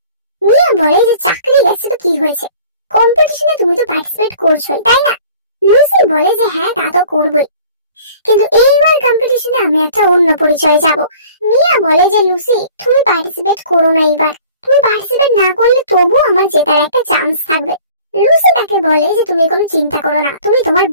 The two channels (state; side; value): inverted; both; correlation -0.49